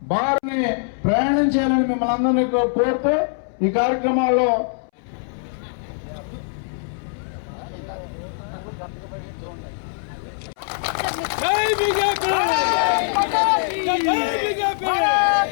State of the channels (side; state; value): right; silent; 64 dB below the other